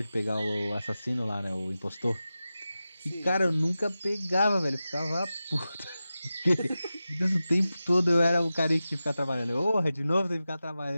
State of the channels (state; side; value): inverted; both; correlation -0.94